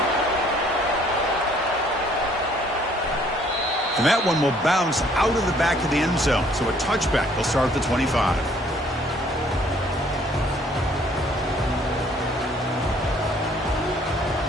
And that one will bounce out of the back of the end zone. So a touchback will start at the 25.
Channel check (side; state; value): both; normal; correlation 0.61